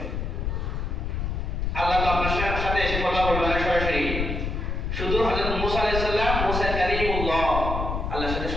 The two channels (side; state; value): left; noise; rumble, 2 dB below the sound